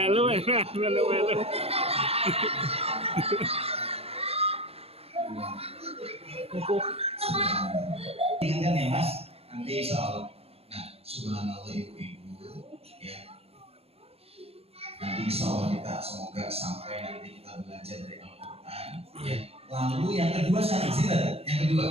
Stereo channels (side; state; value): left; late; 0.29 ms